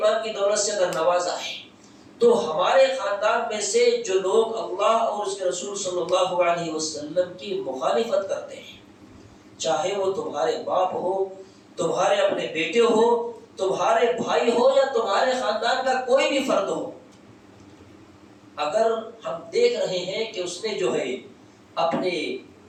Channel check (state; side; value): identical; both; correlation 1.00